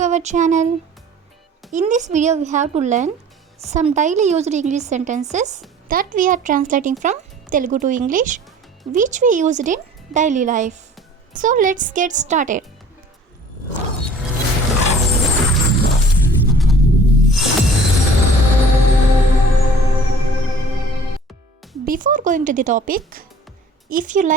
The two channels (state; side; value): normal; both; correlation 0.49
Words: our channel. In this video we have to learn some daily used English sentences that we are translating from Telugu to English which we used in daily life. So let's get started. Before going to the topic, if you